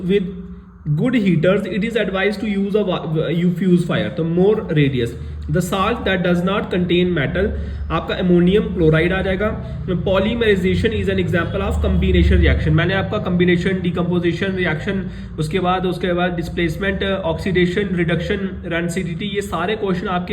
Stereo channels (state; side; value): identical; both; correlation 1.00